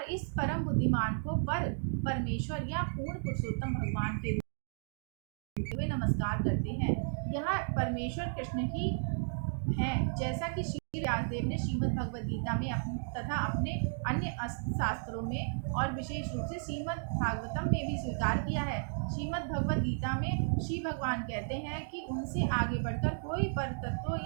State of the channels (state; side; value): silent; left; digital silence